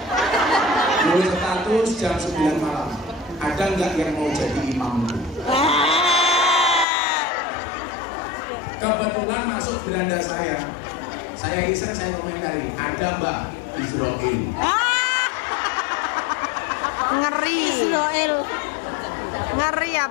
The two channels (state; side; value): drops out; right; at 6.9 s